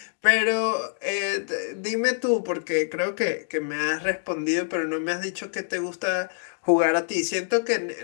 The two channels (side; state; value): right; silent; digital silence